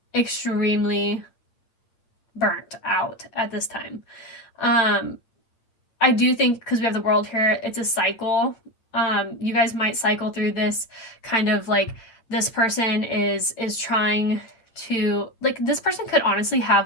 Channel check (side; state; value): right; late; 8.9 ms